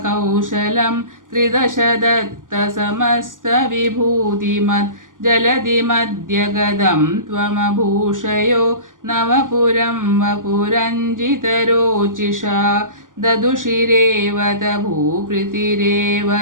ത്രിദശദത്തസമസ്തവിഭൂതിമത് ജലധിമദ്യഗതം ത്വമഭൂഷയോ നവപുരം വപുരഞ്ജിതരോചിഷാ ദദുഷിരേവത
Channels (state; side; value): late; left; 0.88 ms